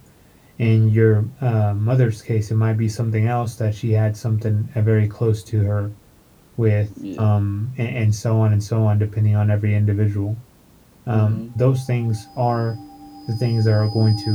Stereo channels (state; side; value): identical; both; correlation 1.00